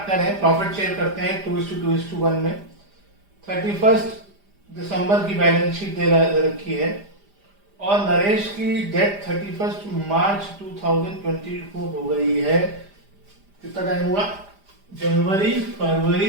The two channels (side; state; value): left; late; 5.0 ms